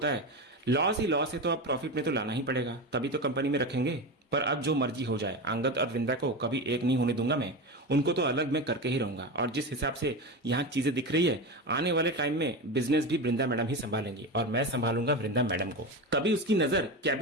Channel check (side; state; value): both; normal; correlation 0.21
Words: है, लॉस ही लॉस है तो अब प्रॉफिट में तो लाना ही पड़ेगा, तभी तो कंपनी में रखेंगे। पर अब जो मर्जी हो जाए, अंगद और वृंदा को कभी एक नहीं होने दूंगा मैं। उनको तो अलग मैं करके ही रहूंगा। और जिस हिसाब से यहाँ चीजें दिख रही है, आने वाले टाइम में बिजनेस भी वृंदा मैडम ही संभालेंगी और मैं संभालूंगा वृंदा मैडम को। तभी उसकी नजर